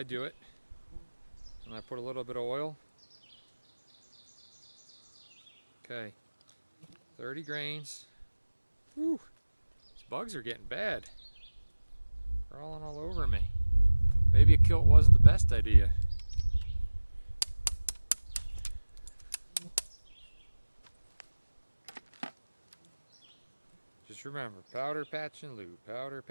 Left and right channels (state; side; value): inverted; both; correlation -1.00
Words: do it. And I put a little bit of oil. Okay, 30 grains. Whew, these bugs are getting bad. Crawling all over me. Maybe a kilt wasn't the best idea. Just remember, powder, patch, and lube. Powder,